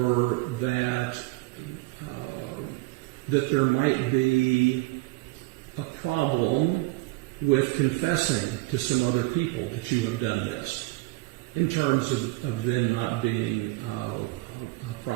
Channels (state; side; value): quieter; left; 20.3 dB